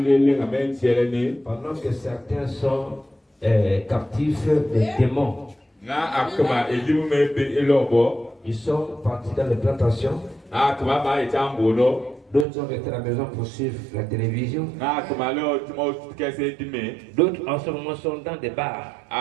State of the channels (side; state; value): left; drops out; at 12.5 s